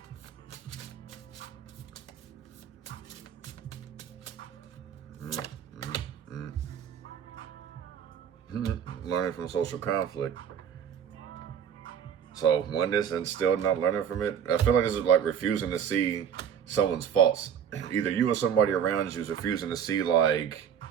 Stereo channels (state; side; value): quieter; left; 8.3 dB